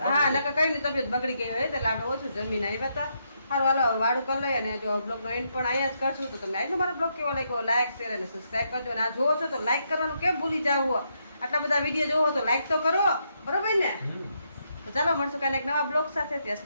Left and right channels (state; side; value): inverted; both; correlation -0.78